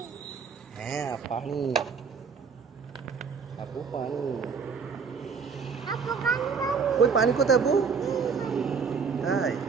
হ্যাঁ পানি, আপু পানি। কই পানি কোথায় আপু? তাই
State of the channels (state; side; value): quieter; left; 5.7 dB